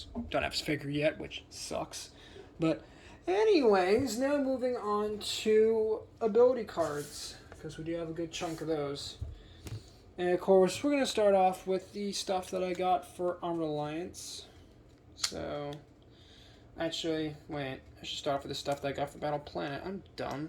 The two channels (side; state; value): both; identical; correlation 1.00